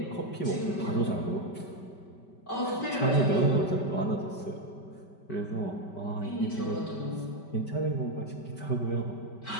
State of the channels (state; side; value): late; right; 5.2 ms